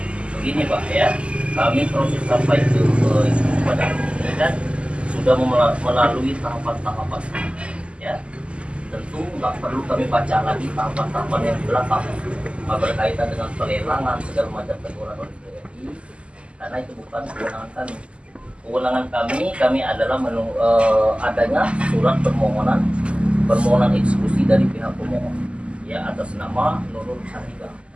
begini Pak ya, kami proses sampai ke pada dan sudah melalui tahapan-tahapan ya. Tentu nggak perlu kami baca lagi tahapan-tahapan yang di belakang berkaitan dengan pelelangan segala macam teguran oleh TNI, karena itu bukan kewenangan kami. Kewenangan kami adalah adanya surat permohonan eksekusi dari pihak pemohon ya atas nama Nurul Sahika.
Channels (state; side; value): late; left; 0.055 ms